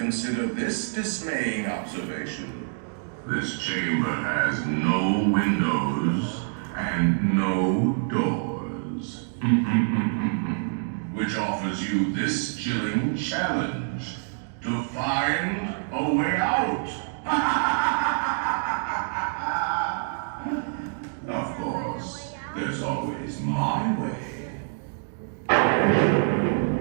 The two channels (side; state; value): left; silent; 61 dB below the other